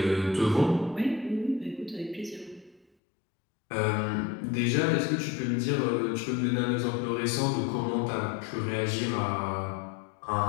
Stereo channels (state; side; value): drops out; right; at 2.9 s